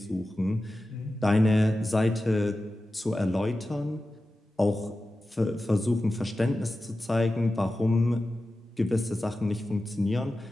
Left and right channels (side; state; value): both; normal; correlation 0.94